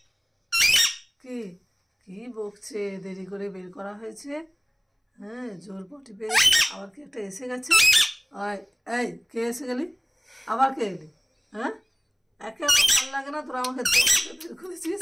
কি কি বকছে? দেরি করে বের করা হয়েছে। হ্যাঁ, জোর পটি পেয়ে আবার কি একটা এসে গেছে। আয়, এই কে এসে গেলি? আবার কে এলি? হ্যাঁ, একে আমার ভালো লাগে না, তোরা আমাকে বের করেছিস।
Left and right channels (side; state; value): both; identical; correlation 1.00